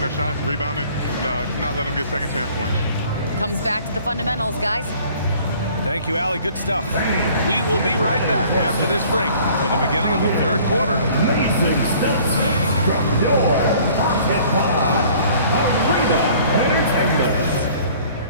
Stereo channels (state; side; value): inverted; both; correlation -0.53